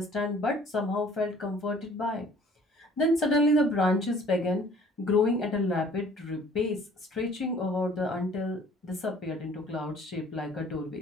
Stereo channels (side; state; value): both; normal; correlation 0.54